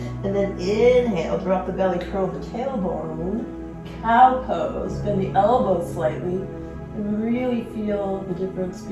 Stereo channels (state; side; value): identical; both; correlation 1.00